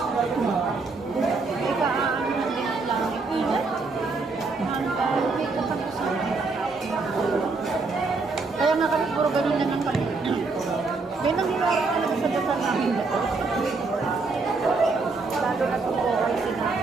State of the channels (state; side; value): quieter; left; 4.0 dB